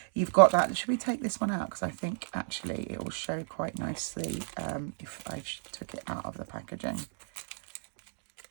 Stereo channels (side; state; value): left; silent; digital silence